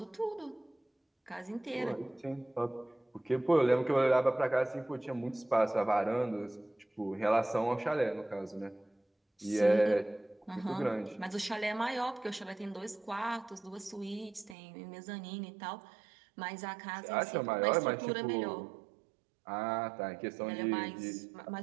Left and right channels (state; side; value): drops out; left; at 14.6 s